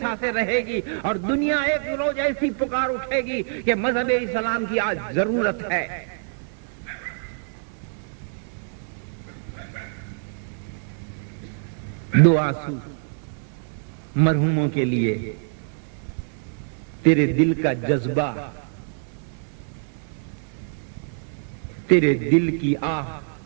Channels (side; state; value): left; silent; 62 dB below the other